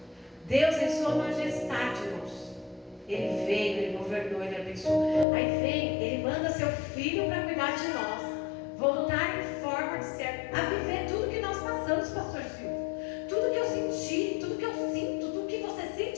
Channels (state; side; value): drops out; right; at 5.2 s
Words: Deus em sua majestade, irmãos. Ele veio, Ele governou, Ele abençoou. Aí vem, Ele manda seu Filho para cuidar de nós. Voltar em forma de servo, a viver tudo que nós passamos, pastor Silvio. Tudo que eu senti, tudo que eu sinto, tudo que você